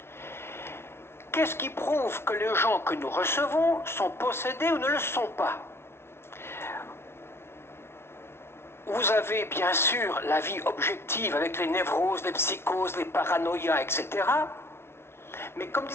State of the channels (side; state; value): right; late; 0.12 ms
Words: Qu'est-ce qui prouve que les gens que nous recevons sont possédés ou ne le sont pas? Vous avez bien sûr la vie objective avec les névroses, les psychoses, les paranoïas, etc. Mais comme